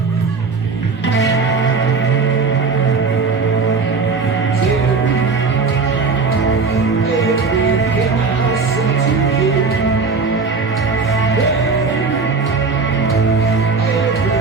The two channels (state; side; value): quieter; left; 4.6 dB